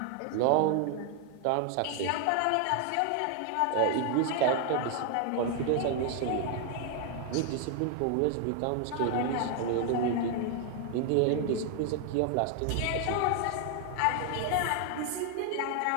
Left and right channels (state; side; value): different; both; correlation 0.00